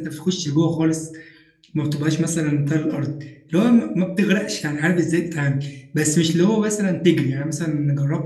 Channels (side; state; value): both; identical; correlation 1.00